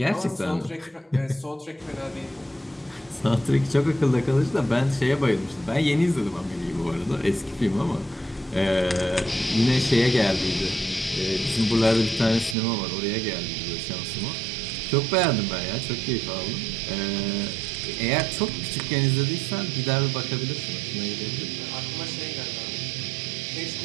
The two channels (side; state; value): left; drops out; at 12.6 s